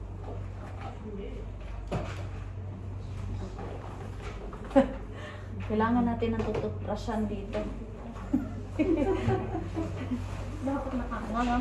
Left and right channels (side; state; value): both; identical; correlation 1.00